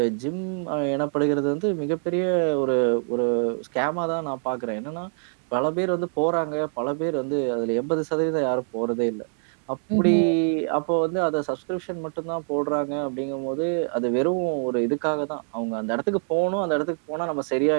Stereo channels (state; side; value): silent; left; digital silence